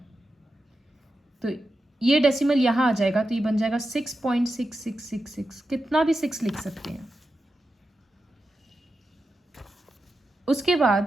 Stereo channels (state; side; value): normal; both; correlation 0.90